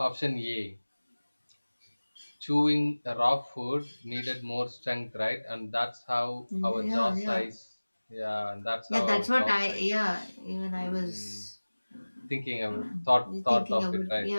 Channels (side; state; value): both; inverted; correlation -1.00